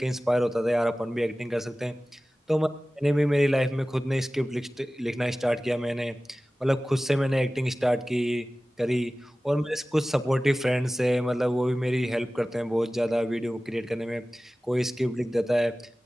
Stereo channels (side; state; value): both; normal; correlation 0.97